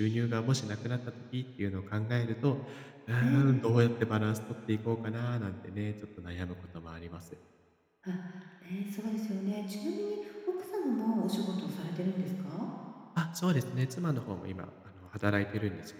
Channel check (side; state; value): both; identical; correlation 1.00